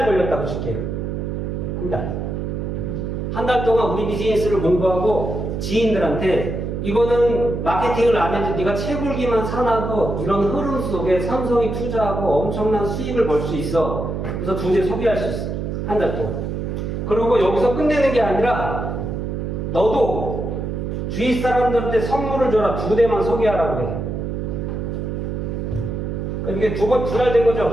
걸렸다고 칠게요. 한 달. 한 달 동안 우리 비즈니스를 공부하고 지인들한테 이거는 마케팅을 안 해도 네가 채굴기만 사놔도 이런 흐름 속에 삼성이 투자하고 엄청난 수익을 벌 수 있어. 그래서 2대 소개할 수 있어. 한 달 동안. 그리고 여기서 끝내는 게 아니라 너도 주위 사람들한테 선물을 줘라. 2대만 소개하라고 해. 이게 두 달 된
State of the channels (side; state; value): right; noise; hum, 3 dB below the sound